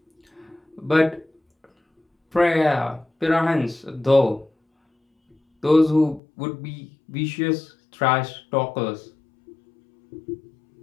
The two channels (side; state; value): right; drops out; at 6.2 s